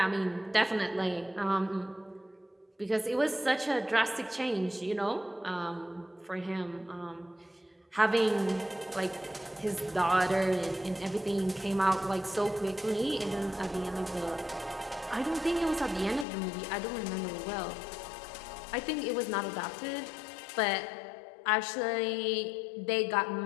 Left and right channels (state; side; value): drops out; right; at 16.2 s